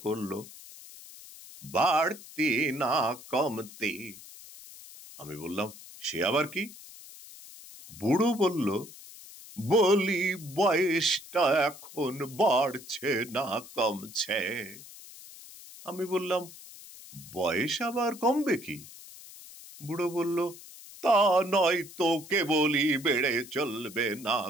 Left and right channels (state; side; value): noise; left; hiss, 17 dB below the sound